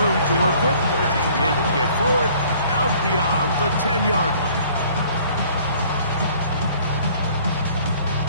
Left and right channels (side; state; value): both; inverted; correlation -0.55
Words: to work with as he's able to get forward out beyond the 10-yard line.